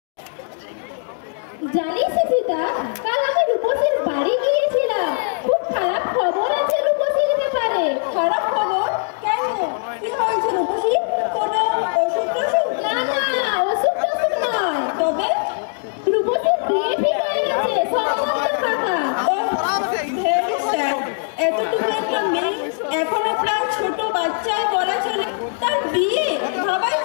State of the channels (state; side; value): silent; right; digital silence